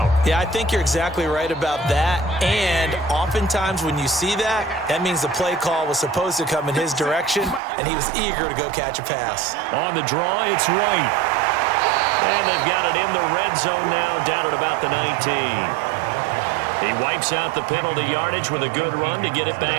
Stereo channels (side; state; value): left; drops out; at 7.6 s